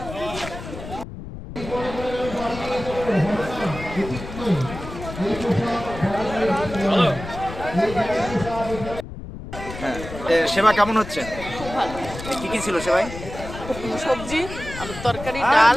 হ্যাঁ, সেবা কেমন হচ্ছে? খুব ভালো। কি কি ছিল সেবাই? সবজি, আলুর তরকারি, ডাল,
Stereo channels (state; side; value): noise; left; rumble, 11 dB below the sound